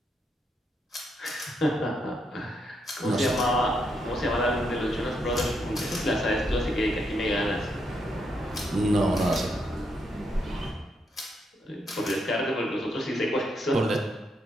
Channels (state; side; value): normal; both; correlation 0.78